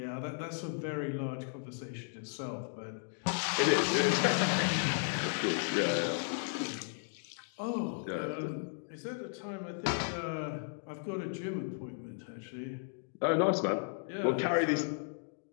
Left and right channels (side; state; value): right; silent; digital silence